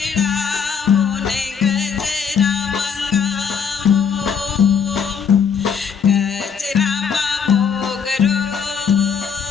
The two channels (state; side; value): quieter; right; 6.7 dB